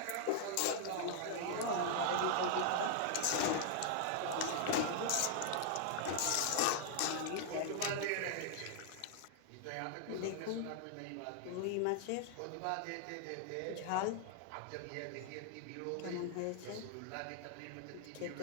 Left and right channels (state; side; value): different; both; correlation -0.01